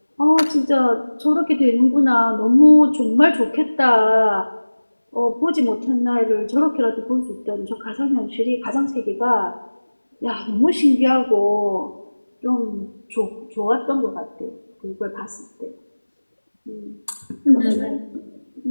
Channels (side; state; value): both; inverted; correlation -1.00